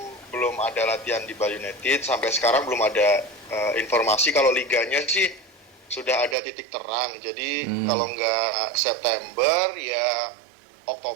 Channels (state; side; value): drops out; left; at 6.4 s